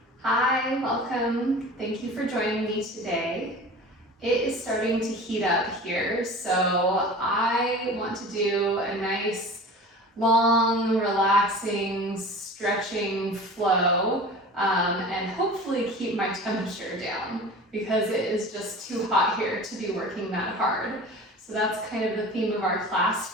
Hi, welcome. Thank you for joining me today. It is starting to heat up here, so I want to do a nice, long, relaxing, stretching flow and hopefully keep my temperature down because it is just too hot here to be working that hard. So that's kind of the theme of our class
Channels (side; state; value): both; normal; correlation 0.38